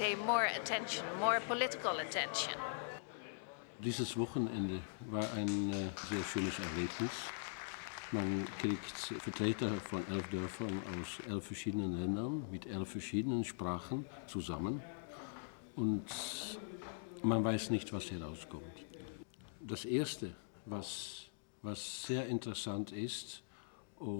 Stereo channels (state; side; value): silent; right; digital silence